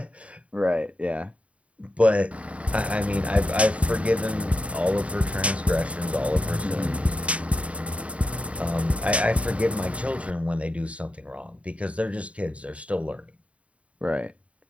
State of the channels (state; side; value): late; left; 0.064 ms